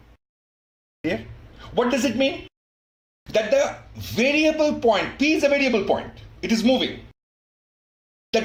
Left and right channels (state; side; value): identical; both; correlation 1.00